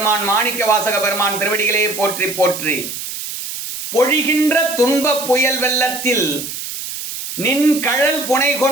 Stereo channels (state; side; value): noise; right; hiss, 7 dB below the sound